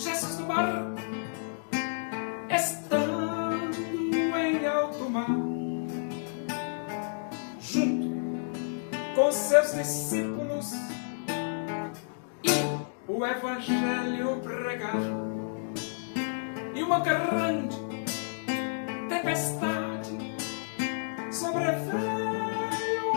no barco, estando em alto mar, junto com seus discípulos, e o evangelho pregar, e uma grande tempestade sobreveio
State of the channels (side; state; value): right; silent; digital silence